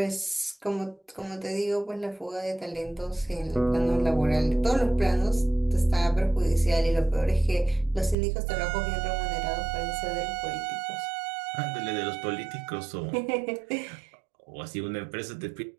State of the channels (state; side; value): drops out; left; at 8.2 s